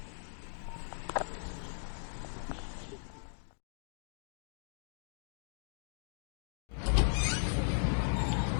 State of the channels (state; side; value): silent; right; digital silence